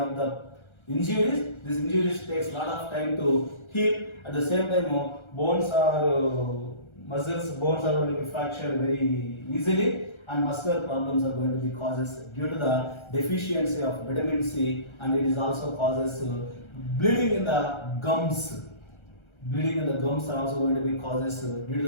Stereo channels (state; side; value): late; right; 1.3 ms